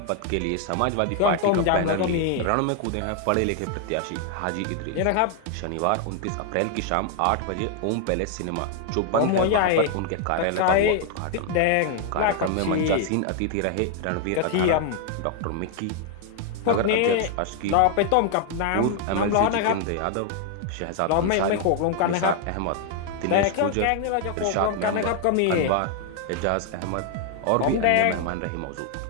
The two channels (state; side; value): different; both; correlation 0.00